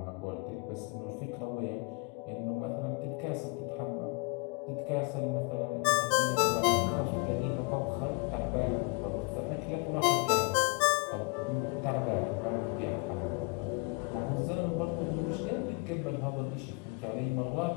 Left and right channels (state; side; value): quieter; right; 31.8 dB